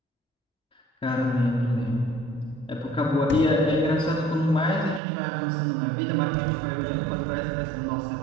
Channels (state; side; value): drops out; left; at 5.0 s